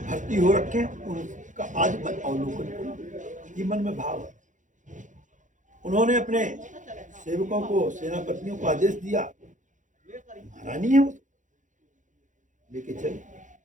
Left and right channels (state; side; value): late; left; 0.36 ms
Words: भर्ती हो रखे उनका आज मैं अवलोकन करूं। ये मन में भाव है। उन्होंने अपने सेवकों को, सेनापतियों को आदेश दिया, महारानी है वो, लेके चले,